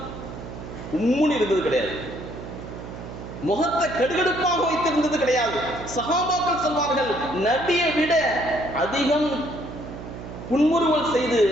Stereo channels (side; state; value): right; noise; hum, 11 dB below the sound